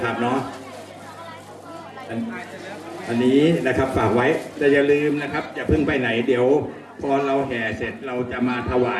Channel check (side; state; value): both; identical; correlation 1.00